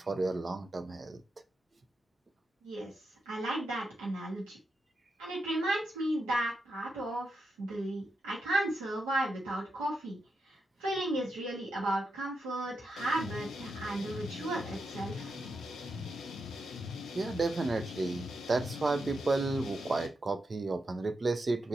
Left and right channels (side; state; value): both; normal; correlation 0.86